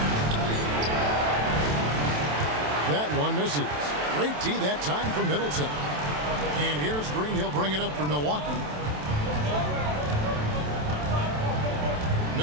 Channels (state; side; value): late; left; 27 ms